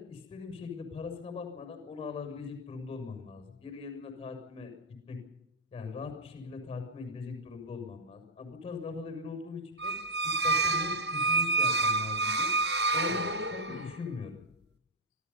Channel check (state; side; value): normal; both; correlation -0.07